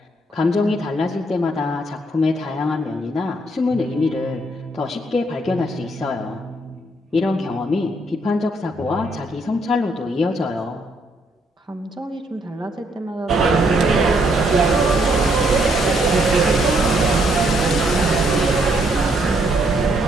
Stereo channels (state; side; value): normal; both; correlation 0.71